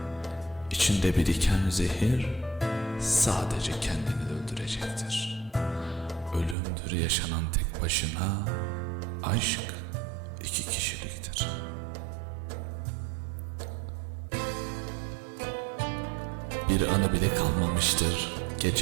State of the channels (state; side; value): drops out; left; at 6.6 s